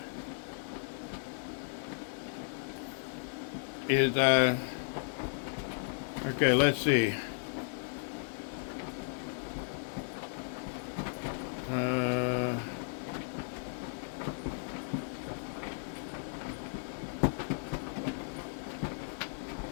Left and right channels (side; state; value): right; silent; digital silence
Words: is okay, let's see.